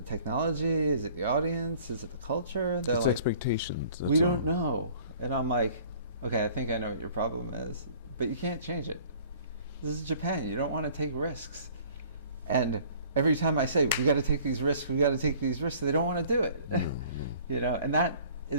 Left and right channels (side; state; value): both; inverted; correlation -0.52